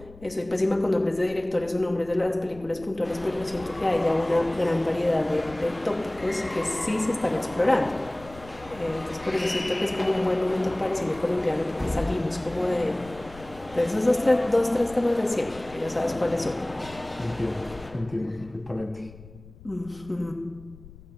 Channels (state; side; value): noise; left; rumble, 20 dB below the sound